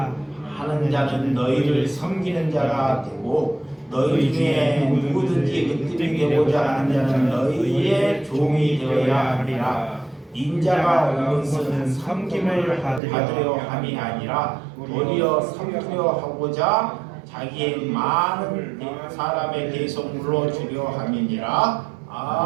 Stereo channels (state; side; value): drops out; left; at 13.0 s